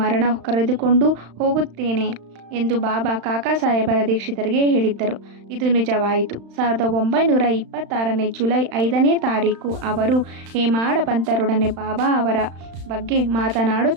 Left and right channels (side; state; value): left; late; 35 ms